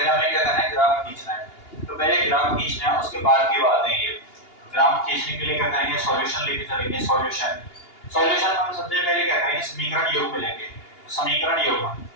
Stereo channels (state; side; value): late; right; 2.8 ms